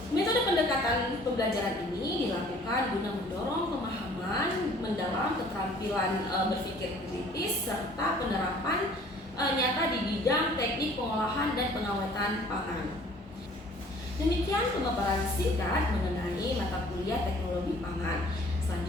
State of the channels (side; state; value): both; normal; correlation 0.53